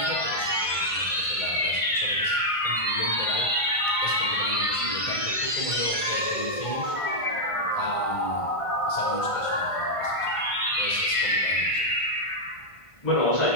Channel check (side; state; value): right; late; 1.5 ms